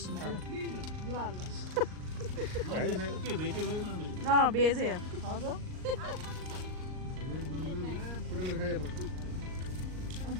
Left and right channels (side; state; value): left; late; 38 ms